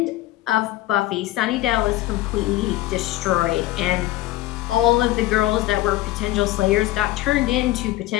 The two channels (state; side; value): quieter; right; 16.3 dB